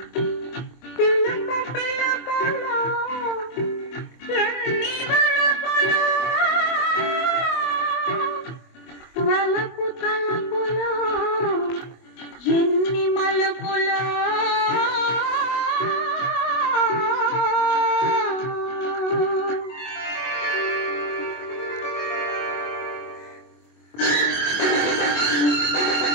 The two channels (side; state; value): right; late; 24 ms